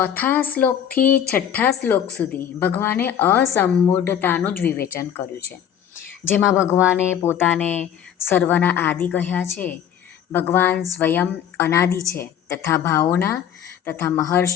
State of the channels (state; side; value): quieter; right; 9.3 dB